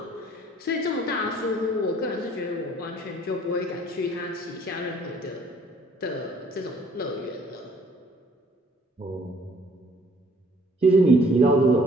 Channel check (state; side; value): normal; both; correlation 0.59